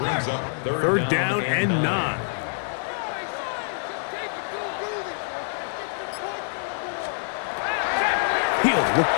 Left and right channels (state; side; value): silent; right; 60 dB below the other